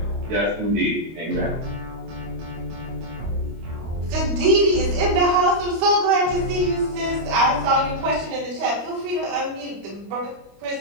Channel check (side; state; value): left; late; 25 ms